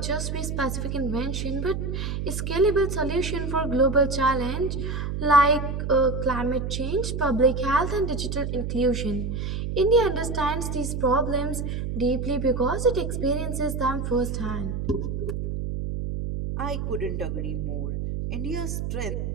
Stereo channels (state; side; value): noise; right; hum, 3 dB below the sound